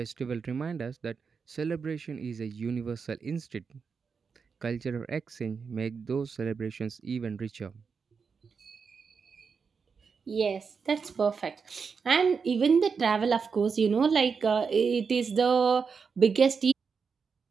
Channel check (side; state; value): left; quieter; 5.6 dB